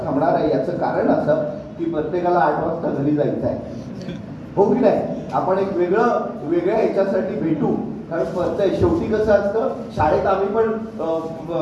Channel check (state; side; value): identical; both; correlation 1.00